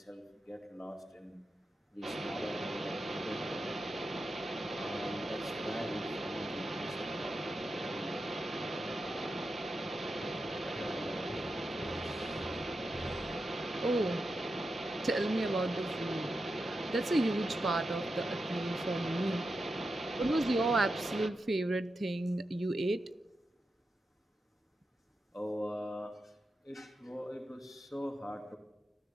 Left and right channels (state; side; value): normal; both; correlation 0.89